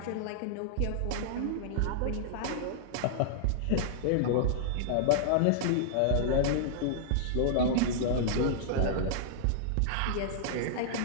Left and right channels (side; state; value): both; different; correlation -0.01